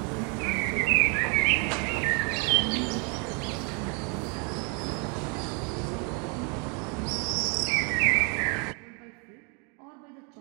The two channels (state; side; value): quieter; left; 34.6 dB